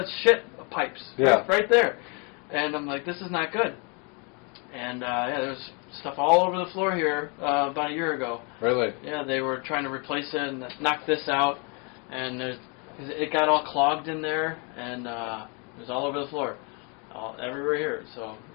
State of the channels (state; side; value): quieter; right; 34.1 dB